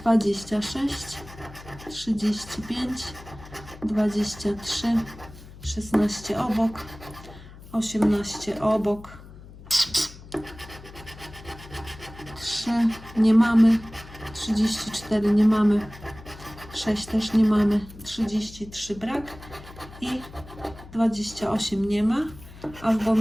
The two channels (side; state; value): left; noise; hum, 18 dB below the sound